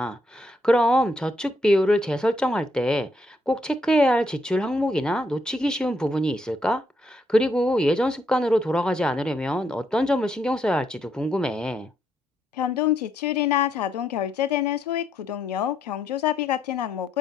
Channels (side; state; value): both; normal; correlation 0.75